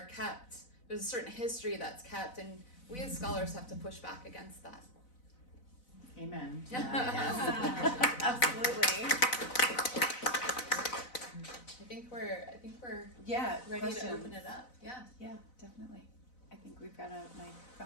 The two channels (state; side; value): late; right; 4.0 ms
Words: kept, there's a certain history that's kept, and we as scholars have to push back against that. Amen. Yes. Absolutely. I think we're ready questions. to open it up. Yeah, definitely. I think we've got a mic